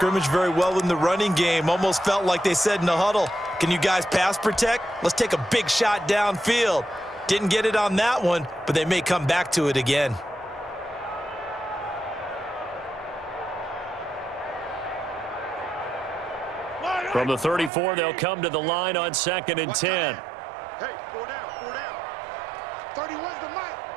very well in the running game. Almost felt like they said in the huddle, can you guys pass protect? Let's take a big shot downfield. Didn't get it on that one, but they may come back to it again. From the 34, they'll come to the line on 2nd and 10. Hey, 4 down, 4 down. 31's the mic.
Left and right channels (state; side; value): drops out; left; at 17.7 s